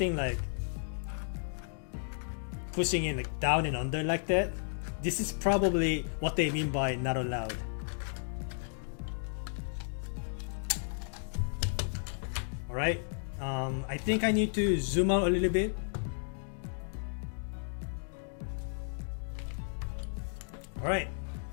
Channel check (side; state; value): right; silent; digital silence